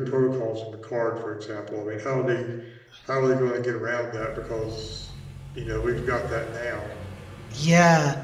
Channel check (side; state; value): both; identical; correlation 1.00